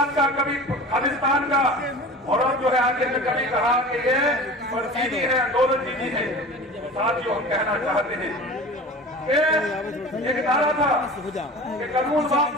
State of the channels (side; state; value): both; normal; correlation 0.37